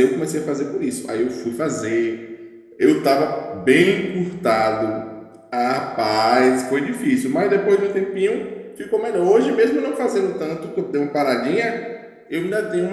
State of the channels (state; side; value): identical; both; correlation 1.00